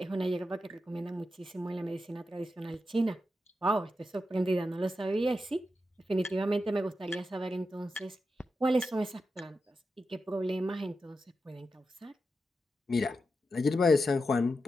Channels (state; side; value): normal; both; correlation 0.88